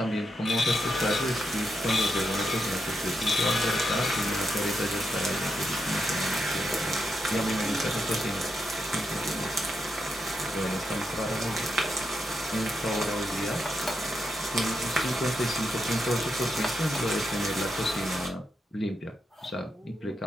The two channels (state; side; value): normal; both; correlation 0.83